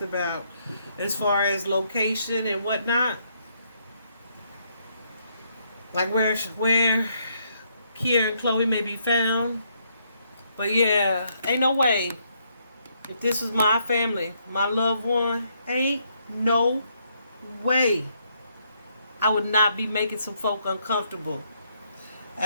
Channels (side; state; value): both; inverted; correlation -0.74